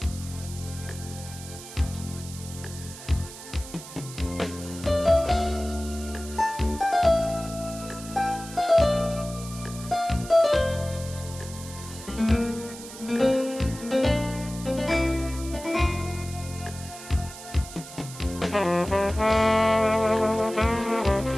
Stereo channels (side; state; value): right; noise; hiss, 14 dB below the sound